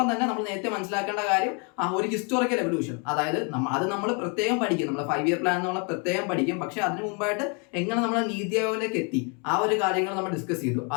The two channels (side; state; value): right; quieter; 35.3 dB